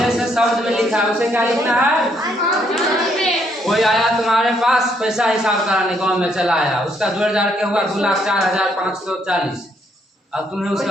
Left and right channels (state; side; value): normal; both; correlation 0.71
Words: से शब्द में लिखा है, उसे क्या लिखना है? कोई आया तुम्हारे पास पैसा हिसाब कराने गाँव में चला आया, उसका जोड़ जाड़ के हुआ 2,04,540। अब तुम्हें